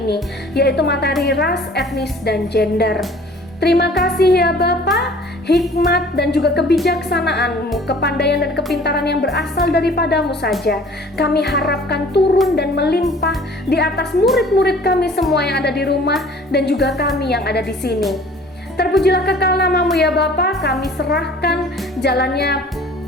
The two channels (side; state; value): both; normal; correlation 0.50